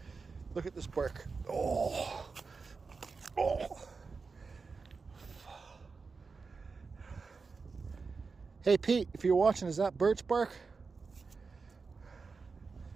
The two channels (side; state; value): left; quieter; 4.6 dB